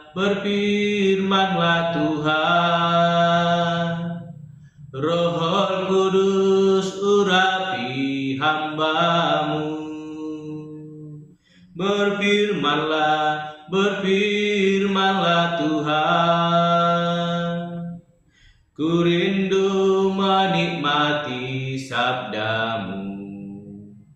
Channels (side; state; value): both; identical; correlation 1.00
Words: Tuhan. Roh Kudus urapi hamba-Mu. Berfirmanlah Tuhan. Ku rindu menikmati sabda-Mu.